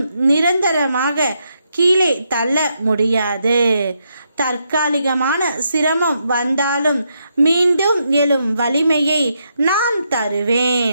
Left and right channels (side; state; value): both; inverted; correlation -0.80